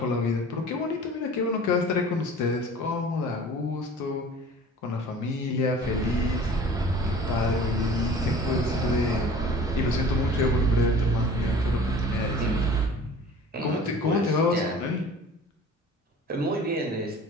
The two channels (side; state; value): both; normal; correlation 0.45